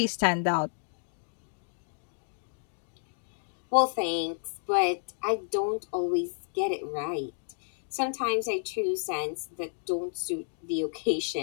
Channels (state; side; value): silent; right; digital silence